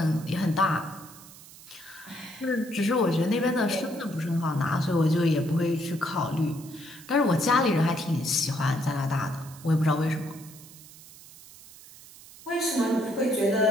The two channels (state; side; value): noise; right; hiss, 19 dB below the sound